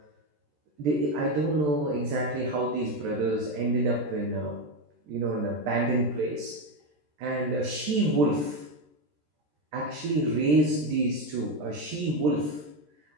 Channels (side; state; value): left; late; 13 ms